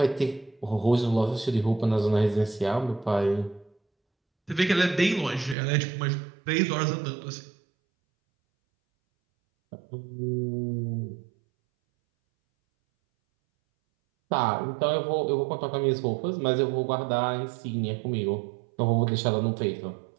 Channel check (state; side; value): drops out; left; at 5.6 s